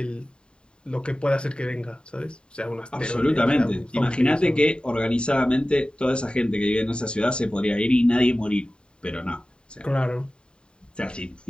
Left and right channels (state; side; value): late; right; 0.051 ms